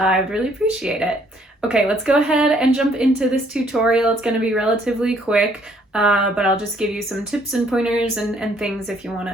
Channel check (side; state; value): both; normal; correlation 0.65